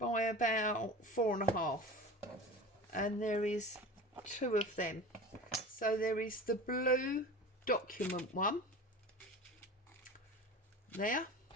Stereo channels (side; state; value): both; normal; correlation 0.34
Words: about 4.5, and there is 2 of them. So there is the blue document one there,